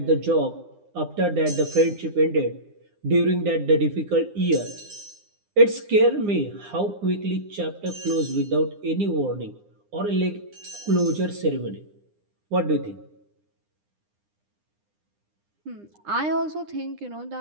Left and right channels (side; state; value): left; late; 9.9 ms